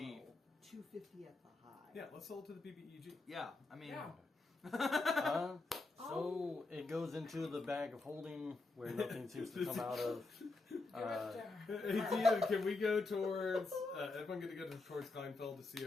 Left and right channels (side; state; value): right; quieter; 3.4 dB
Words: low, 250 at the high. Yeah, let's sell it to the BBEG. Yeah, I mean. Yeah. So it goes into the bag of holding where nothing seems to come out of. Hey, Tia, can we go towards? Everyone going to go towards Kleinfeld to see